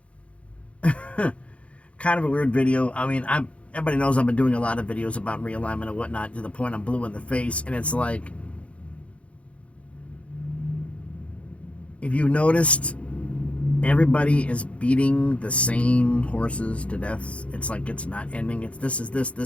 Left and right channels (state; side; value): late; right; 0.062 ms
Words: kind of a weird video. I mean, everybody knows I've been doing a lot of videos about realignment and whatnot to the point I'm blue in the face, and it's like, if you noticed, everybody is beating the same horses to death. It's like it's not ending. It's this is this,